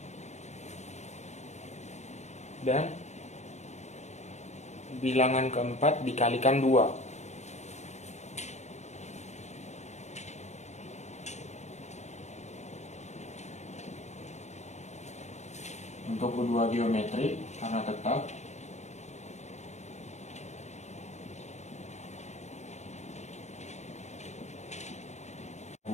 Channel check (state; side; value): late; right; 0.33 ms